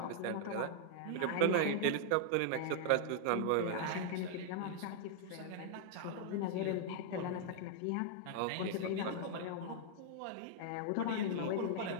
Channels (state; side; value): different; both; correlation -0.01